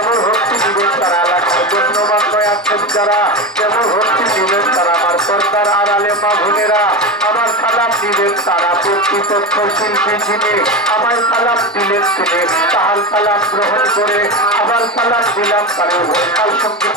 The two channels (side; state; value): both; normal; correlation 0.20